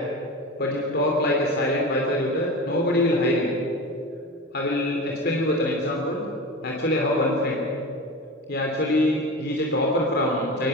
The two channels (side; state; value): both; normal; correlation 0.28